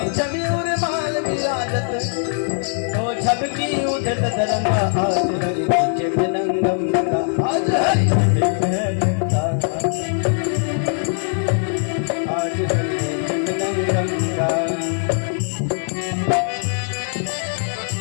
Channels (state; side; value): silent; right; 65 dB below the other